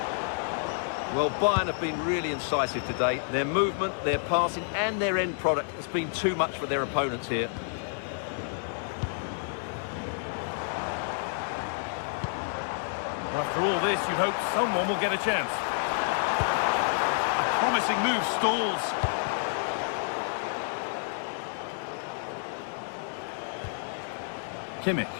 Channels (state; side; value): silent; right; digital silence